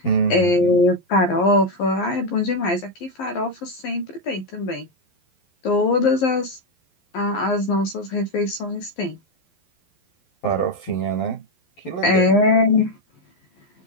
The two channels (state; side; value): late; right; 11 ms